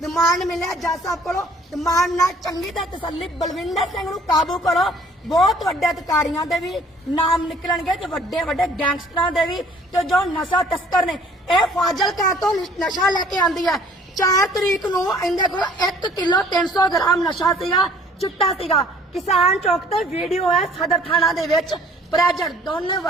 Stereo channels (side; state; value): both; normal; correlation 0.56